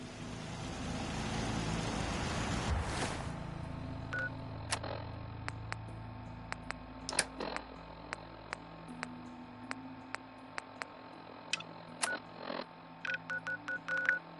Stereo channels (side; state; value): both; identical; correlation 1.00